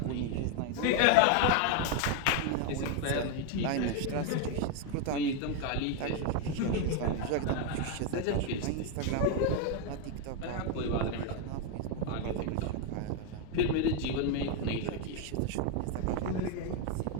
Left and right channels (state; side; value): different; both; correlation 0.01